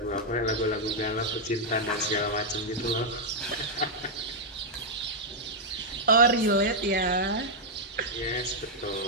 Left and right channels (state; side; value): normal; both; correlation -0.04